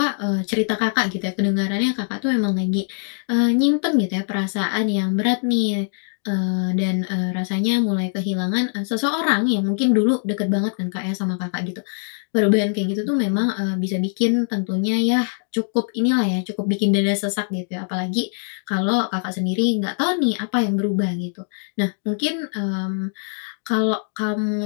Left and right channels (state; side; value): silent; right; digital silence